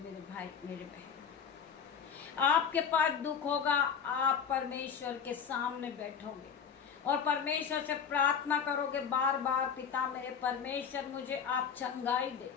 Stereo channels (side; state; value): right; quieter; 7.0 dB